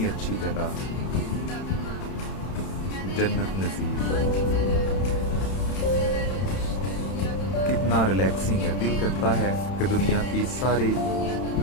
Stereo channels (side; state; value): right; late; 31 ms